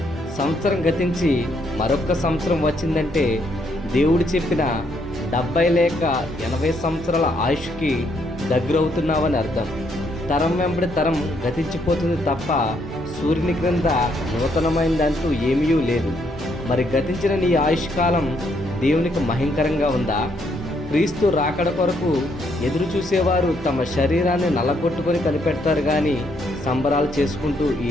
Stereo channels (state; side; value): normal; both; correlation 0.73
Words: సంవత్సరం గతించి మరొక్క సంవత్సరం వచ్చిందంటే దేవుడు చెప్పిన 70 లేక 80 సంవత్సరాల ఆయుష్కి దగ్గరవుతున్నావని అర్థం. తరం వెంబడి తరం గతించిపోతుంది తప్ప సూర్యుని క్రింద నూతనమైనదంటూ ఏమీ లేదు. మరి గతించిన నీ ఆయుష్కాలం దేవునికి మహింకరంగా ఉందా? క్రీస్తు రాకడ కొరకు ఎదురు చూసేవారు తమ శరీరాన్ని నల్లగొట్టుకొని కనిపెడతారు కానీ సంబరాలు చేసుకుంటూ ఈ